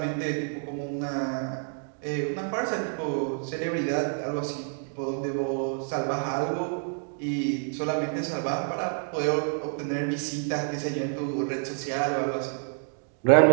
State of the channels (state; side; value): silent; left; 59 dB below the other